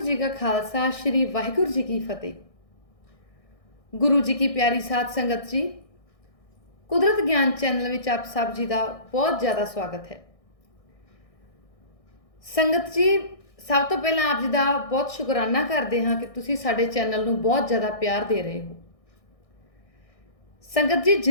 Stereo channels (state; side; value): late; right; 1.6 ms